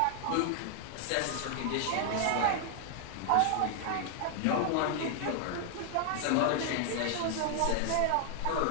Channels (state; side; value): different; both; correlation 0.00